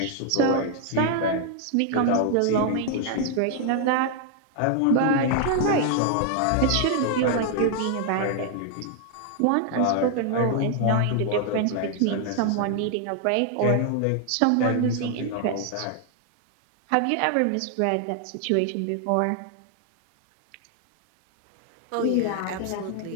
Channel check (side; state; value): both; different; correlation 0.00